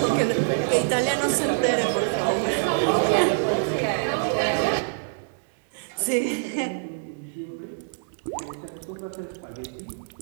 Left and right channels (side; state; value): left; silent; digital silence